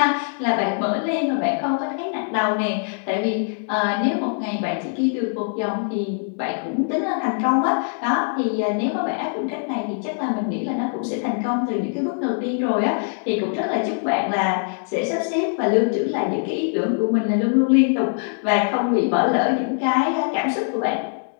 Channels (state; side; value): silent; right; digital silence